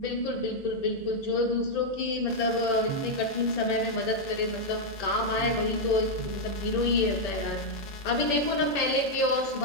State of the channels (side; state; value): right; late; 1.8 ms